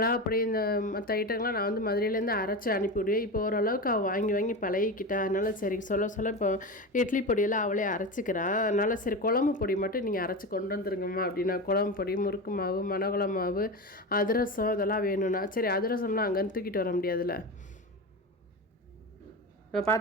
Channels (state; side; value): normal; both; correlation 0.23